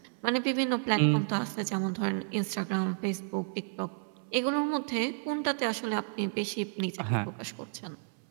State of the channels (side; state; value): left; silent; 57 dB below the other